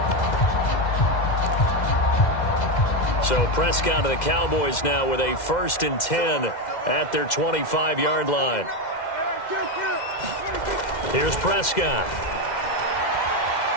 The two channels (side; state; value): right; late; 2.1 ms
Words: So Prescott of the Cowboys now with a 1st and 10 at their 25-yard line. Here's Prescott.